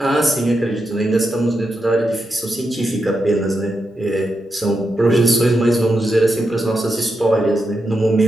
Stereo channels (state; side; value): normal; both; correlation 0.86